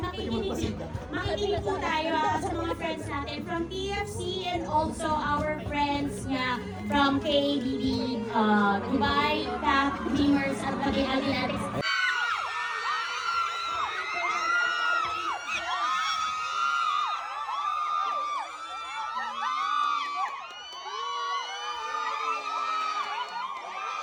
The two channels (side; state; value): both; identical; correlation 1.00